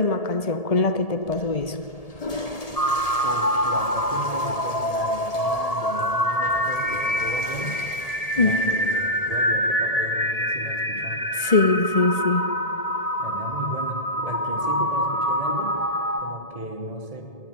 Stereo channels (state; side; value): late; right; 1.7 ms